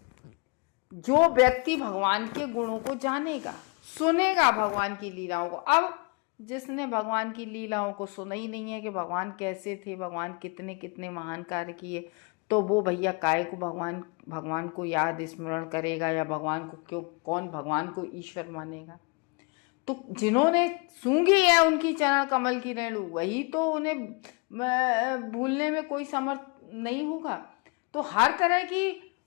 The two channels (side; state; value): right; quieter; 30.6 dB